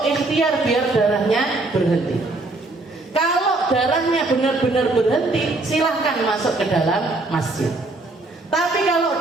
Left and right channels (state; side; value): quieter; left; 3.1 dB